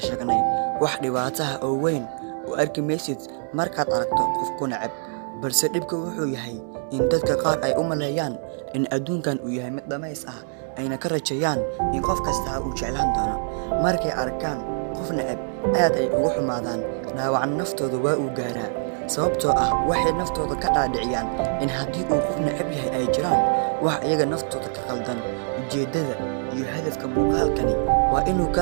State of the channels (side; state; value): left; silent; digital silence